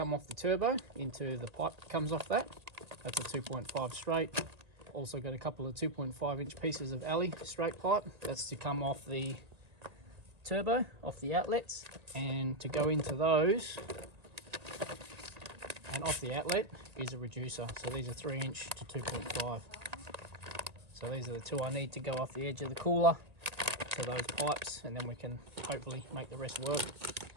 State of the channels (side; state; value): left; late; 1.9 ms